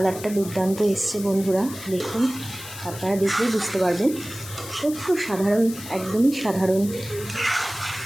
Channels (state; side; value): noise; left; hiss, 13 dB below the sound